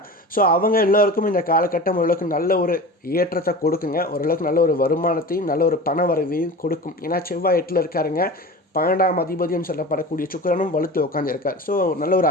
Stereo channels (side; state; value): both; normal; correlation 0.33